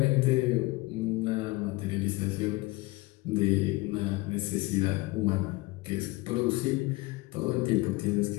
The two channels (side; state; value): right; quieter; 21.9 dB